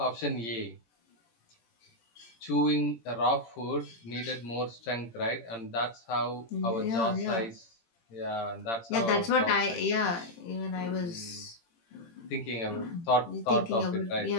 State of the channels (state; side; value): late; right; 18 ms